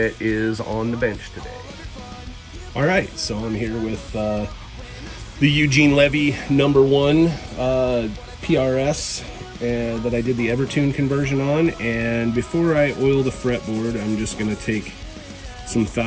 is on the bench today. All right, so I'm here with the Eugene Levy number 1 PRS that I did the EverTune conversion on. And before I oil the fretboard, I'm just gonna take some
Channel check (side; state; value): both; identical; correlation 1.00